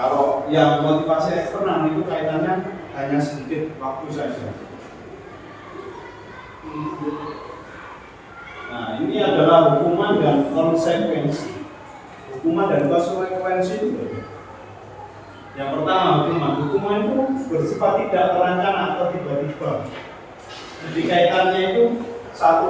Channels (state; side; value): identical; both; correlation 1.00